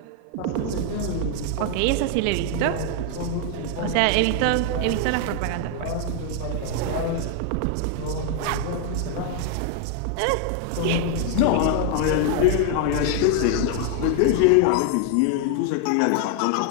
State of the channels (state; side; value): different; both; correlation 0.00